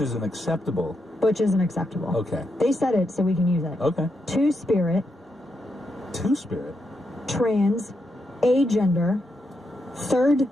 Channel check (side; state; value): both; normal; correlation 0.83